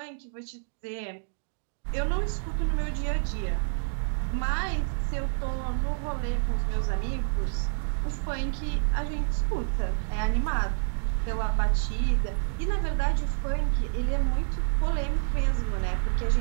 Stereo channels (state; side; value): silent; left; digital silence